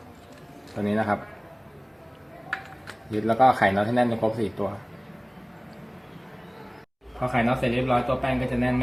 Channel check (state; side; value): identical; both; correlation 1.00